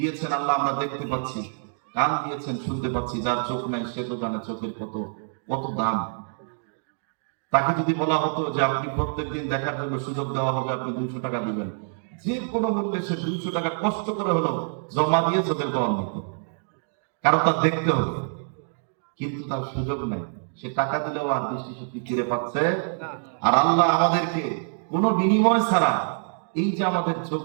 আল্লাহ, আমরা দেখতে পাচ্ছি। কান দিয়েছেন, শুনতে পাচ্ছি। যার চোখ নাই সে তো জানে চোখের কত কত দাম। তাকে যদি বলা হতো যে আপনি প্রত্যেকদিন দেখার জন্য সুযোগ দেওয়া হবে, আপনি 200 টাকা দিবেন, যে কোনো মূল্যে সে 200 টাকা কষ্ট করে হলো জমা দিয়ে চোখের পাওয়া নিত, কারণ তার দেখতে হবে। কিন্তু তার সুযোগ নেই, সে টাকা দিলেও আর দৃষ্টিশক্তি ফিরে পাচ্ছে। আর আল্লাহ আমাদেরকে কোনো বিনিময় ছাড়া এই যে আমাদের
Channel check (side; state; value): left; silent; digital silence